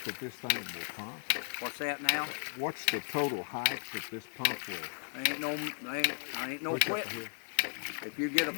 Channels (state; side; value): silent; right; digital silence